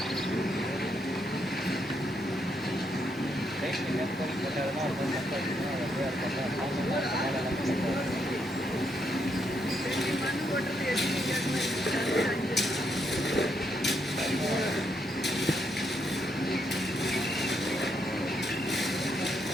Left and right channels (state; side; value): normal; both; correlation 0.77